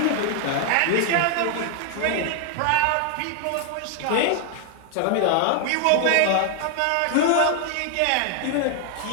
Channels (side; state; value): both; different; correlation 0.00